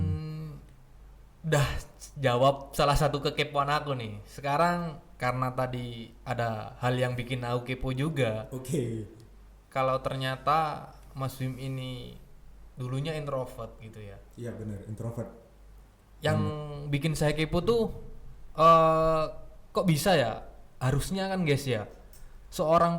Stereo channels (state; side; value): identical; both; correlation 1.00